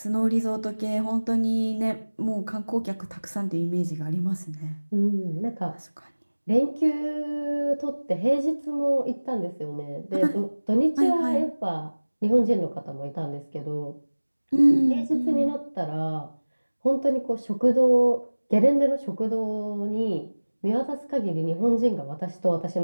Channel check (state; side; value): inverted; both; correlation -1.00